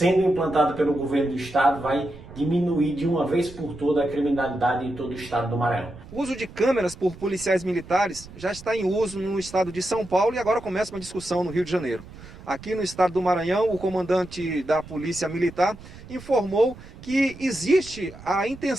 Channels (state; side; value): noise; right; rumble, 17 dB below the sound